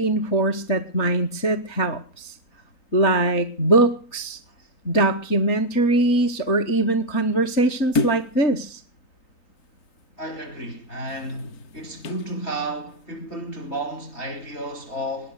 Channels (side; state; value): right; late; 3.9 ms